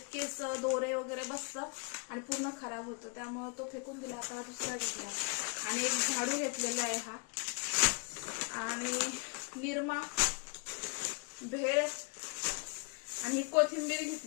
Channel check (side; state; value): right; quieter; 37.3 dB